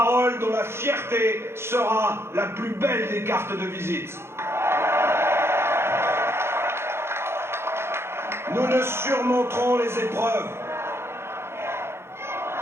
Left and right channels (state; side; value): late; left; 0.12 ms